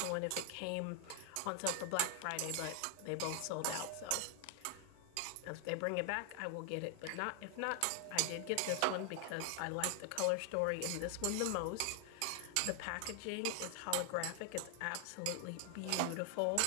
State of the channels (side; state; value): both; different; correlation 0.00